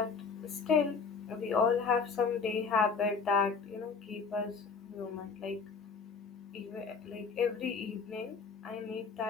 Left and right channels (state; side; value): quieter; right; 5.2 dB